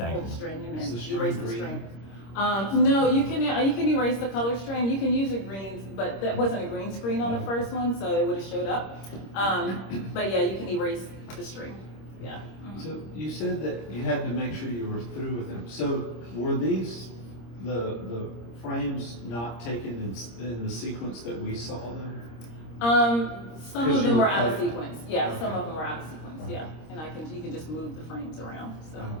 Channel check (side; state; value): right; late; 26 ms